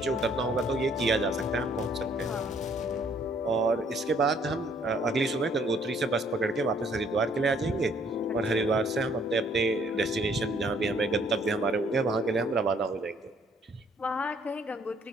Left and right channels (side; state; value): both; normal; correlation 0.63